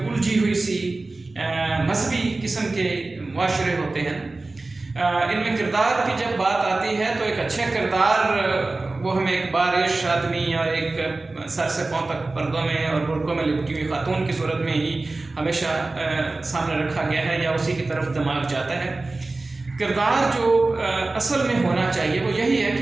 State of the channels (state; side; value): quieter; left; 3.3 dB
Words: ہوئی سی مذہبی قسم کے معاشرے ہوتے ہیں، ان میں کردار کی جب بات آتی ہے تو ایک اچھا کردار وہ ہمیں ایک بارش آدمی اور ایک سر سے پاؤں تک پردوں میں اور برقعوں میں لپٹی ہوئی خاتون کی صورت میں ہی ہمیشہ سامنے رکھا گیا ہے یا اسی کی طرف دماغ جاتا ہے۔ کردار جو اصل میں ہونا چاہیے وہ یہی ہے